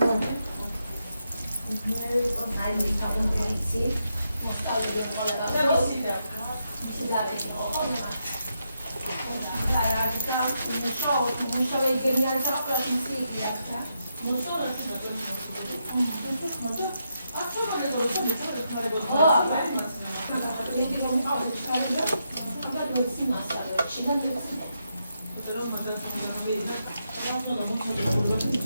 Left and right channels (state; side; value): inverted; both; correlation -0.82